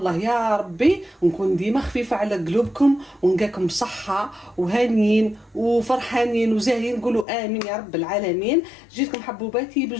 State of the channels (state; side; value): drops out; right; at 7.2 s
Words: يا ربي نكون ديما خفيفه على قلوبكم ونلقاكم بصحه وهانيين وفرحانين وزاهيين. نقولوا امين يا رب العالمين. جيتكم حبوباتي